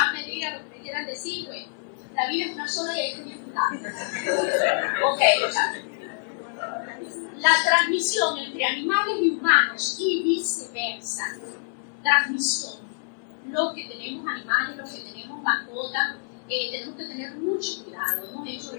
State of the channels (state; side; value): silent; right; 61 dB below the other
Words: a medir a lo que me quieran decir, bueno, la vida es una sola y hay que disfrutarla. Ok, la transmisión entre animales y humanos y viceversa. Transmisión. Los que tenemos animales, los que tenemos mascotas, tenemos que tener mucho cuidado. Hemos hecho